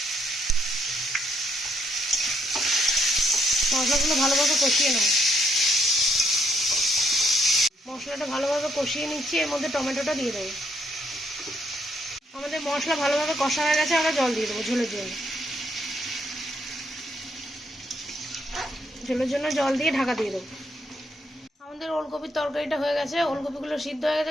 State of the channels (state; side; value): normal; both; correlation 0.73